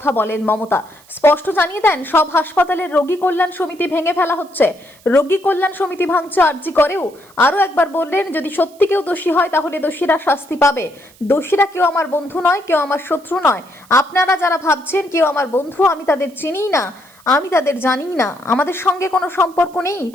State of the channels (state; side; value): noise; right; hiss, 27 dB below the sound